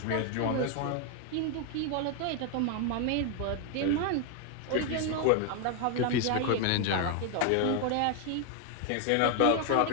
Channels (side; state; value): both; different; correlation 0.01